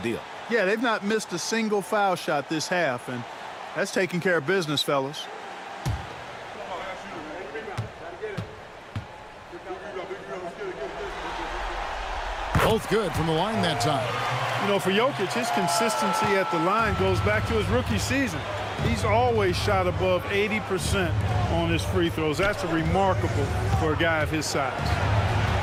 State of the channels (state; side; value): identical; both; correlation 1.00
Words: Yeah, they've not missed a single foul shot this half, and that's taking care of business, fellas. Both good from the line that time. You know, for Jokic, his consistency at the line goes back to his rookie season. He's always shot above 80% on his free throws. That's remarkable for a guy of his size.